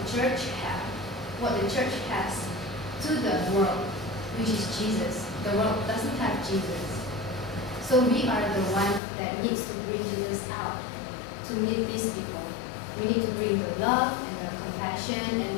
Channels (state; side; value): drops out; right; at 9.0 s